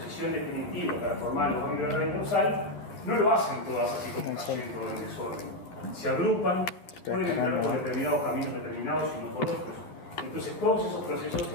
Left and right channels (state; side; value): late; right; 12 ms